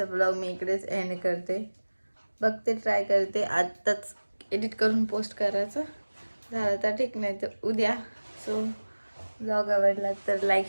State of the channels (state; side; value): inverted; both; correlation -1.00